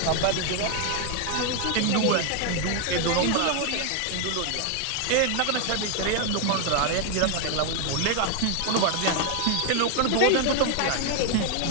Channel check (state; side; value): different; both; correlation 0.01